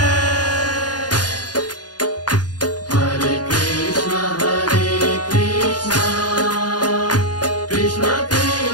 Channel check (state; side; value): late; right; 0.69 ms